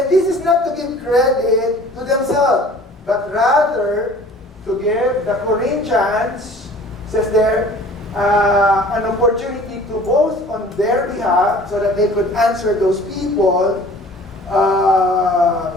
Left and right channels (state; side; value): normal; both; correlation 0.47